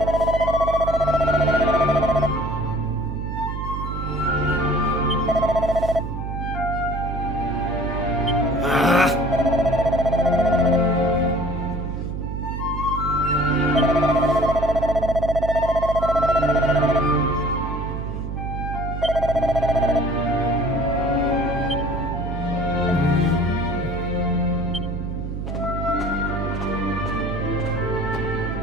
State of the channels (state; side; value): noise; right; hum, 5 dB below the sound